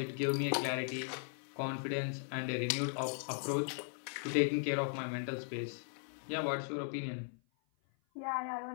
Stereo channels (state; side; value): silent; right; 53 dB below the other